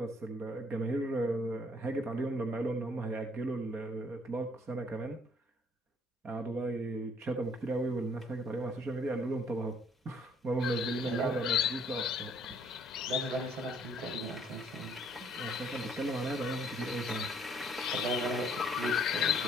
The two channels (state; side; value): normal; both; correlation 0.63